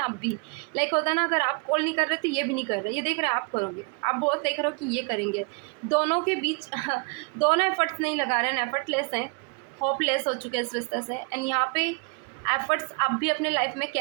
आप भी लाइक होता है ना, अगर आप कॉल नहीं कर रहे तो ये भी नहीं कर रहे, ये देख रहे हैं आप करोगे, आप बहुत देख रहे हो कि ये करेंगे। दोनों के बीच दोनों एफर्ट्स नहीं लगा रहे हैं, एफर्टलेस हैं, होपलेस हो चुके हैं इस रिश्ते से। एंड यहाँ पे एफर्ट्स आप भी अपने लाइफ में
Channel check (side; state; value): left; quieter; 32.9 dB